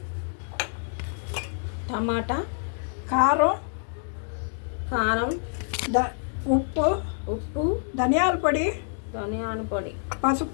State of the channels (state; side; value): silent; right; digital silence